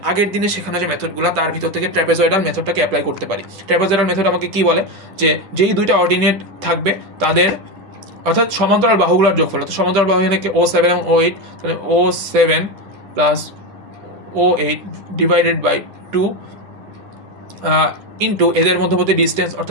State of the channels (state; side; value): late; left; 10 ms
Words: আগের দিনে শেখানো যে মেথডগুলো তার ভিতর থেকে ট্র্যাপেজয়েডাল মেথডটাকে অ্যাপ্লাই করতে পারি। ট্র্যাপেজয়েডাল মেথড আমাকে কী বলে? যে যেই দুইটা অর্ডিনেট থাকবে তাদের অর্থাৎ সমান্তরাল বাহুগুলোর যোগফল, অর্থাৎ সমান্তরাল বাহু এখানে O7 এবং O8, তাহলে O7 plus O8 divided by 2 into এদের মধ্যবর্তী ডিস্টেন্স